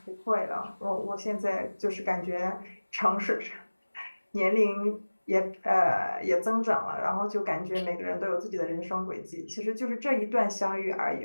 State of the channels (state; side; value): inverted; both; correlation -1.00